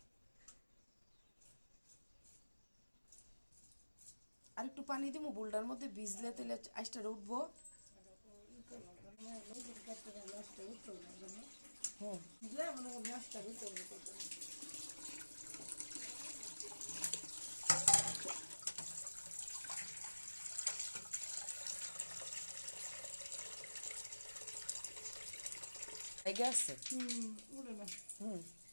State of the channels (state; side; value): inverted; both; correlation -1.00